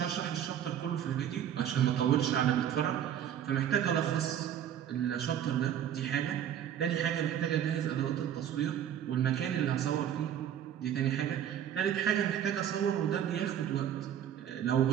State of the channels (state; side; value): quieter; left; 9.9 dB